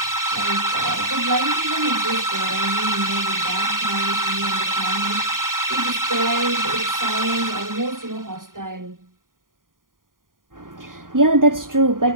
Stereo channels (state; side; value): late; left; 0.90 ms